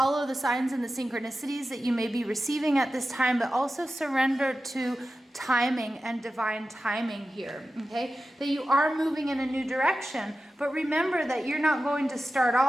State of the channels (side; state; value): both; normal; correlation 0.93